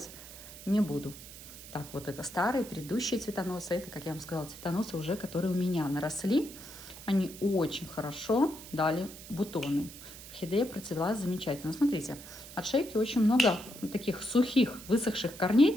не буду. Так, вот это старые, предыдущие цветоносы. Это, как я вам сказала, цветоносы уже, которые у меня наросли. Они очень хорошо дали бутоны. Орхидея процвела замечательно. Смотрите, от шейки очень много таких сухих, высохших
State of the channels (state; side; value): noise; right; hiss, 15 dB below the sound